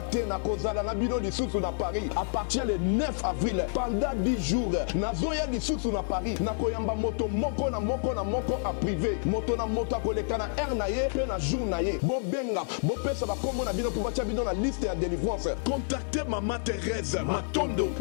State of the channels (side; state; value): right; silent; 58 dB below the other